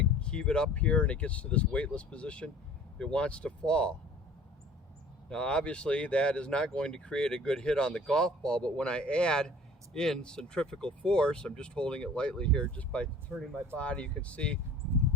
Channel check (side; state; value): both; normal; correlation 0.48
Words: heave it up here and it gets to this weightless position, it wants to fall. Now obviously that is not going to create a good hit on the golf ball, but when I add in centrifugal force, I'm just holding it lightly here, just by turning my body, you can see